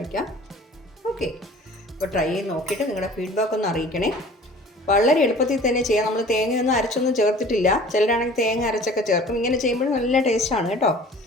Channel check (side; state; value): both; normal; correlation 0.46